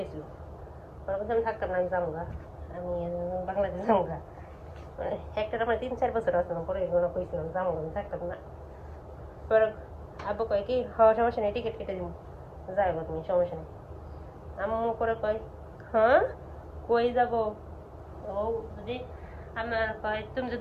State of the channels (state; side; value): identical; both; correlation 1.00